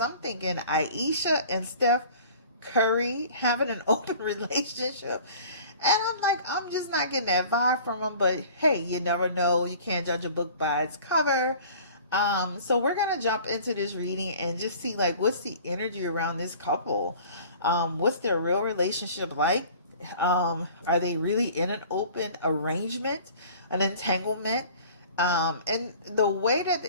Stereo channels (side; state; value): both; inverted; correlation -0.47